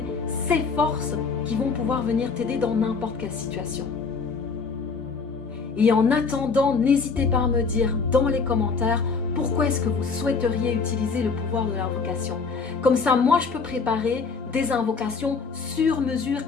ces forces qui vont pouvoir venir t'aider dans n'importe quelle situation. Et en attendant, n'hésitez pas à me dire dans les commentaires pourquoi est-ce que vous souhaiteriez utiliser le pouvoir de l'invocation. Comme ça, moi, je peux préparer des invocations sur mesure,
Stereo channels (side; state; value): right; quieter; 5.0 dB